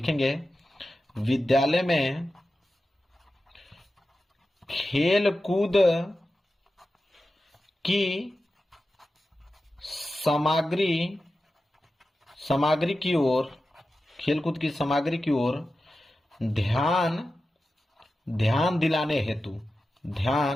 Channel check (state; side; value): normal; both; correlation 0.93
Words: विद्यालय में खेलकूद की सामग्री की ओर, खेलकूद की सामग्री की ओर ध्यान दिलाने हेतु